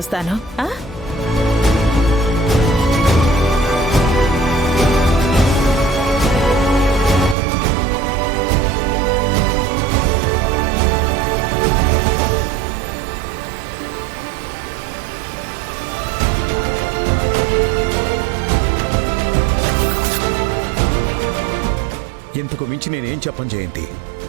ఇంతకు మించి నేనేం చెప్పను జయంతి.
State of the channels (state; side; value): drops out; left; at 7.4 s